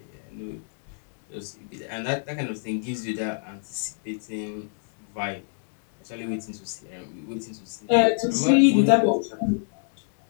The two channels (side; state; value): right; silent; digital silence